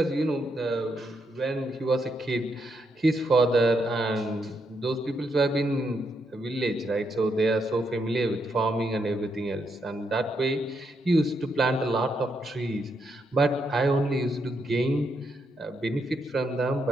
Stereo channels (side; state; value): both; normal; correlation 0.79